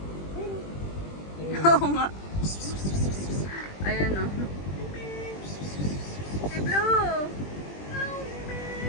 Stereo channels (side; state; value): right; late; 20 ms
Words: Oo nga. Ayan o. Si Blue!